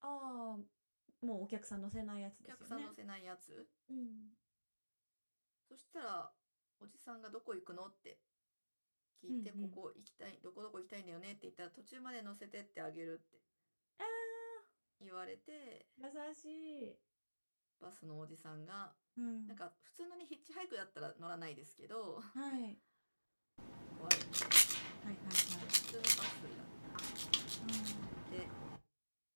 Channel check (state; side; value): inverted; both; correlation -1.00